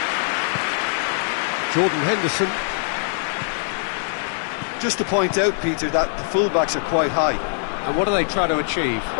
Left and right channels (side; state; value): right; silent; digital silence